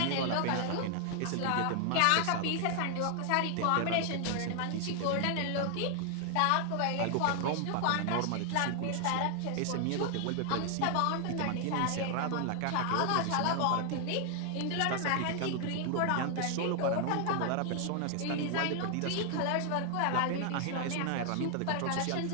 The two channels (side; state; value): both; different; correlation 0.00